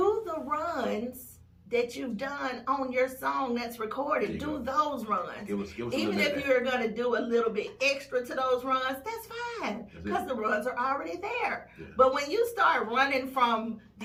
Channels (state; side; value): identical; both; correlation 1.00